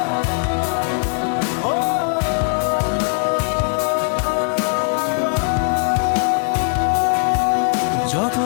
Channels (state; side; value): silent; right; digital silence